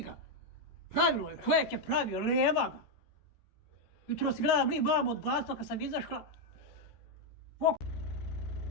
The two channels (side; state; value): right; late; 14 ms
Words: Pravilo je, čovjek je pravio, nema ga. Jutro si gledam li mamu od blatva kad sam izašla.